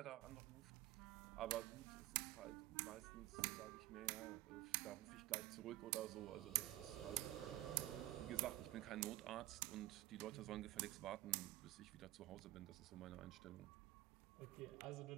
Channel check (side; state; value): left; quieter; 16.8 dB